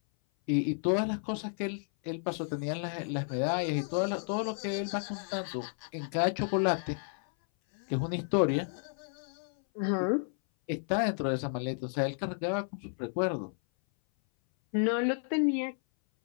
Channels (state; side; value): silent; right; 56 dB below the other